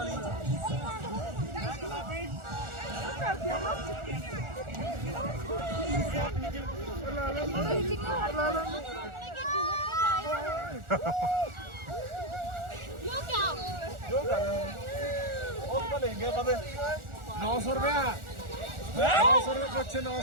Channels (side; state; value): left; late; 1.4 ms